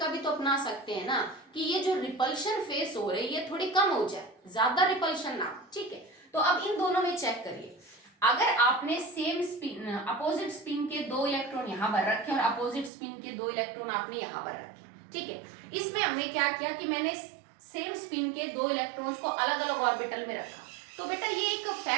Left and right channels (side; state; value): left; drops out; at 12.9 s